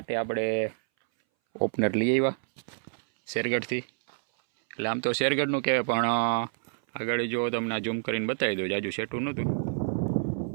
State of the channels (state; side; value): silent; left; 59 dB below the other